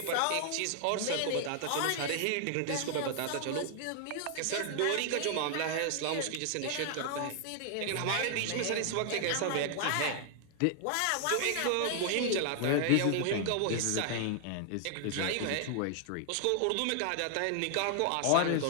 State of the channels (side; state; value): both; different; correlation 0.00